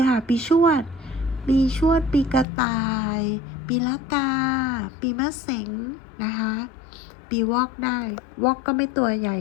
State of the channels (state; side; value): drops out; right; at 2.5 s